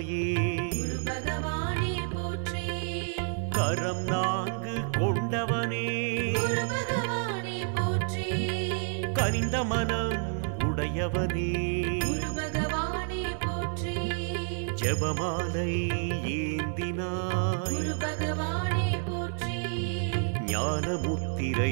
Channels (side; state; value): left; silent; digital silence